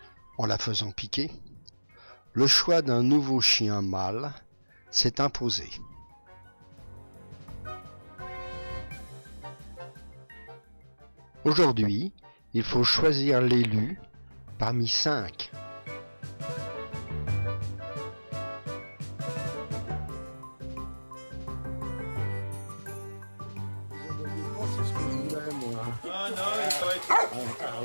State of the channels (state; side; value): inverted; both; correlation -1.00